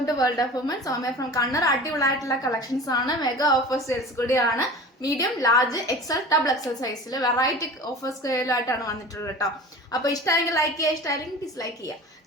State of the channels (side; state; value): both; normal; correlation 0.37